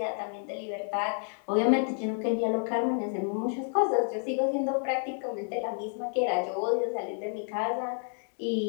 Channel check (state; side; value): silent; right; 58 dB below the other